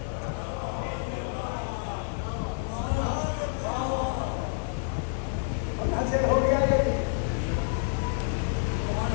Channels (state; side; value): silent; right; 59 dB below the other